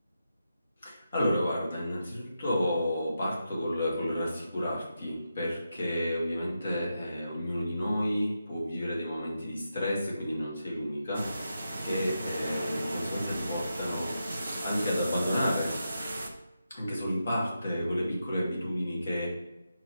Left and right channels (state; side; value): inverted; both; correlation -0.87